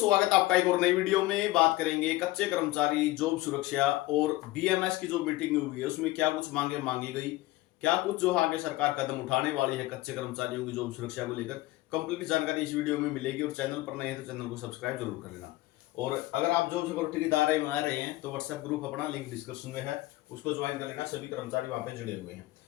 आपका एक और नई वीडियो में। बात करेंगे कच्चे कर्मचारी जॉब सुरक्षा और बीएमएस की जो मीटिंग हुई है उसमें क्या कुछ मांगे मांगी गई, क्या कुछ जो आगे सरकार कदम उठाने वाली है कच्चे कर्मचारियों की जॉब सुरक्षा को लेकर। कंप्लीट जानकारी इस वीडियो में मिलेगी और चैनल पर नए हैं तो चैनल को सब्सक्राइब जरूर कर लेना। और अगर आप जॉब सिक्योरिटी के दायरे में आ रहे हैं तो व्हाट्सएप ग्रुप अपना लिंक डिस्क्रिप्शन में है, उसको ज्वाइन कर लेना। सभी कर्मचारी वहां पे जुड़े हुए हैं।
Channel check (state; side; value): quieter; right; 18.4 dB